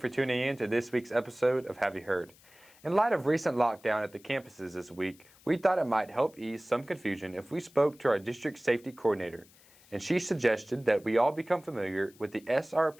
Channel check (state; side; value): noise; left; hiss, 27 dB below the sound